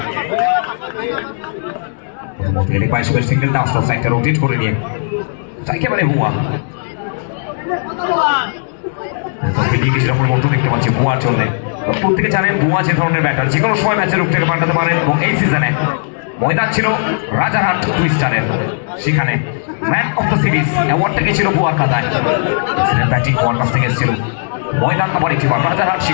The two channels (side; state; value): right; silent; digital silence